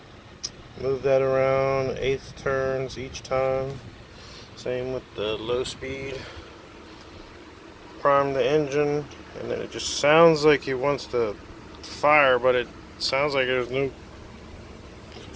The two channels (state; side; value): identical; both; correlation 1.00